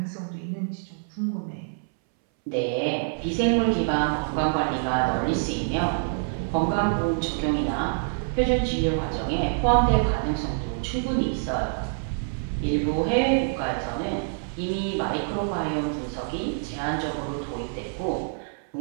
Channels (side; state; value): left; silent; 61 dB below the other